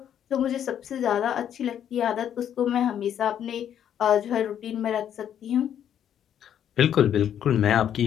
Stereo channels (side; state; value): right; quieter; 9.7 dB